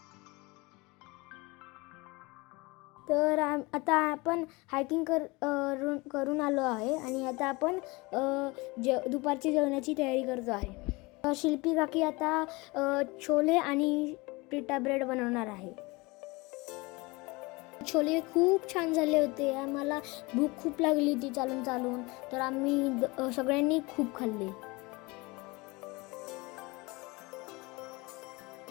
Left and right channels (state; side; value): quieter; right; 24.7 dB